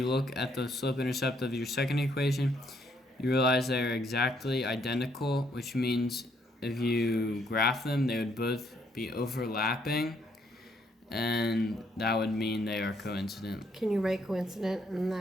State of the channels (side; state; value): both; normal; correlation 0.70